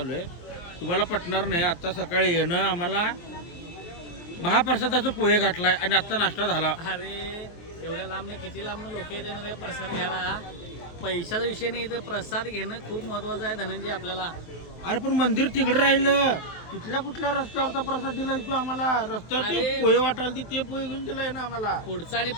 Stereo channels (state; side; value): late; right; 23 ms